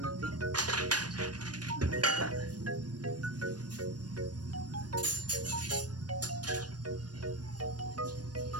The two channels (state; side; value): late; left; 0.69 ms